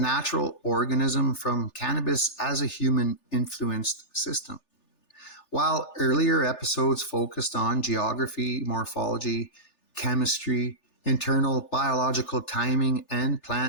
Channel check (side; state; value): right; late; 3.4 ms